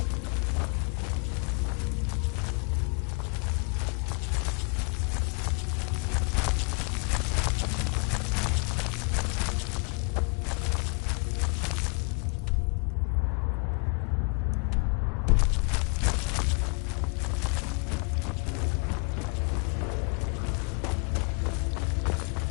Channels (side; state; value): right; quieter; 35.5 dB